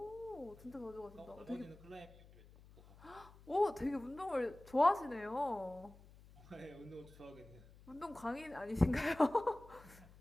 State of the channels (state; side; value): noise; left; hum, 22 dB below the sound